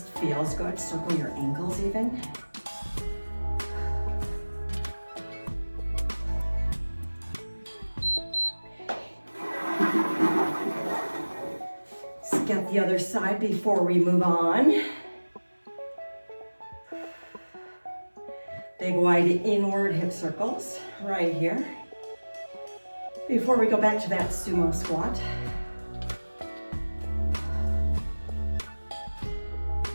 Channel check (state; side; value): inverted; both; correlation -1.00